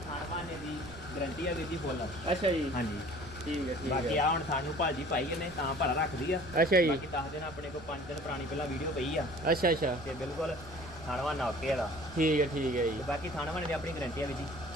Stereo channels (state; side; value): noise; right; rumble, 18 dB below the sound